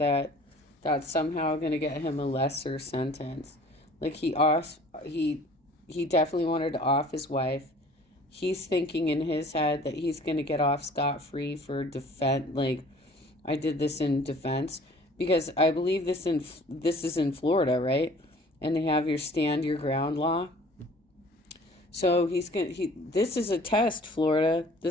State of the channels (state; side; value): normal; both; correlation 0.50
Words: that's somehow going to get him a lesser sentence. Like he definitely wanted to off his wife. He's thinking in his head that he's going to get off scot-free for defense. Like, I did this in defense because I believe this is in Florida, right? And they have your stand your ground law. So this is a test, Florida.